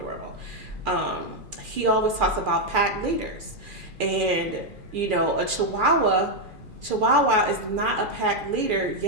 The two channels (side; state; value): left; late; 2.4 ms